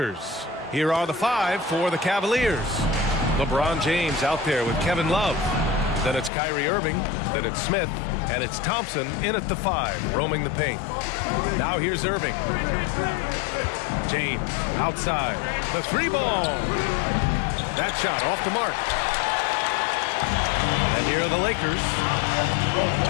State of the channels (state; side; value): drops out; right; at 6.3 s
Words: Here are the five for the Cavaliers. LeBron James out there with Kevin Love. Then it's Kyrie Irving. Then it's Smith. And it's Thompson in at the five, roaming the paint. Now here's Irving. James outside. The three ball. That shot off the mark. And here are the Lakers.